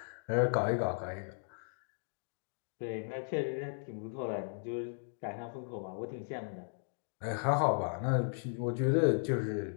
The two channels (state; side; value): silent; right; digital silence